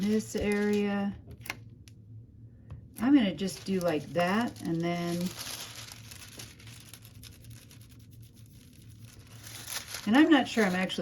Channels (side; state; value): both; identical; correlation 1.00